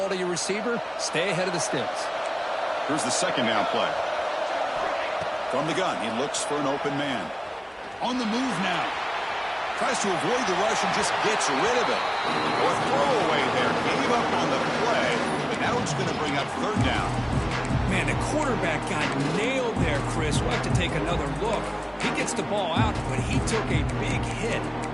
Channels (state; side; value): identical; both; correlation 1.00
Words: to your receiver, stay ahead of the sticks. Here's the 2nd down play. From the gun, he looks for an open man. On the move now. Tries to avoid the rush and just gets rid of it. Or throwaway there. Gave up on the play, but now it's going to bring up 3rd down. Man, the quarterback got nailed there, Chris. We'll have to take another look. He gets the ball out, but he took a big hit.